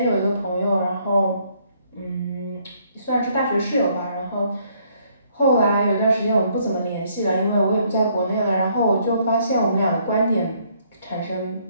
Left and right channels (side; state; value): both; inverted; correlation -0.67